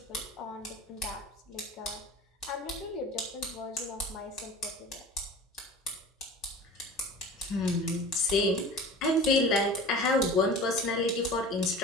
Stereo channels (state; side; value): normal; both; correlation 0.37